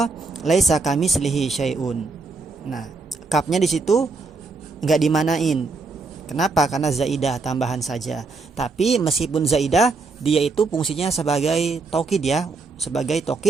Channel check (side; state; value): left; quieter; 3.9 dB